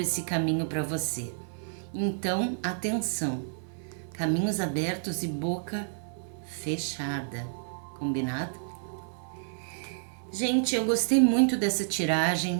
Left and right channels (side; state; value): left; silent; 58 dB below the other